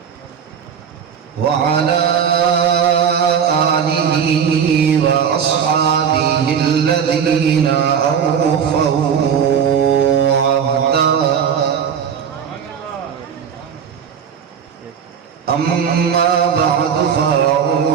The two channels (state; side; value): quieter; left; 7.6 dB